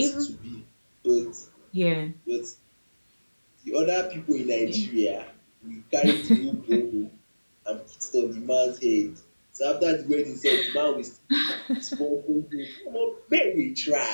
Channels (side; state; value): both; inverted; correlation -1.00